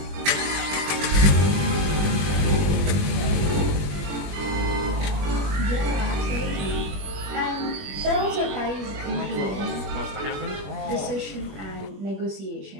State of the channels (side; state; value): left; late; 21 ms